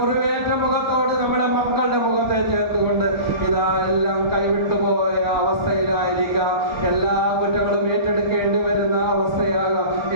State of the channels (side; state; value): left; late; 1.3 ms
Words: മുഖത്തോട് നമ്മുടെ മക്കളുടെ മുഖത്തെ ചേർത്തുകൊണ്ട്, ഇതാ എല്ലാം കൈവിട്ടുപോയ അവസ്ഥയിലായിരിക്കാം, എല്ലാ കുറ്റങ്ങളും ഏറ്റെടുക്കേണ്ടി വരുന്ന അവസ്ഥയാകാം.